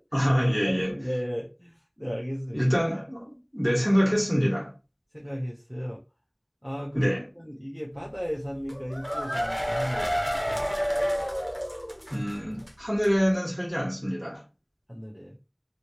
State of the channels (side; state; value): both; identical; correlation 1.00